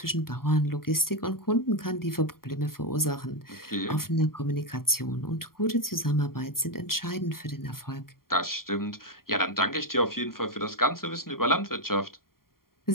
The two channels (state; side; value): late; right; 0.92 ms